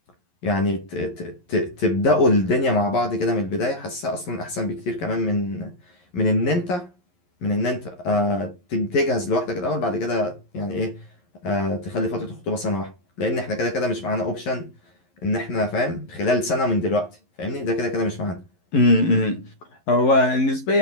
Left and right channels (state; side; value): late; right; 11 ms